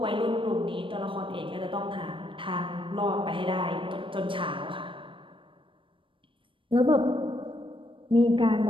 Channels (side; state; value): left; late; 0.25 ms